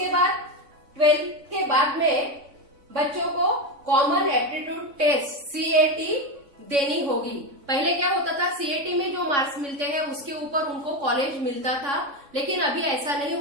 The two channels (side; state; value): left; late; 3.6 ms